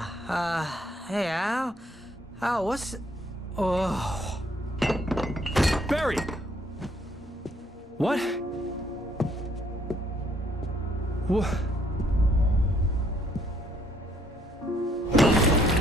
Hey, Al. Al, what's... Oh. Barry! What? What?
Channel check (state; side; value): normal; both; correlation 0.67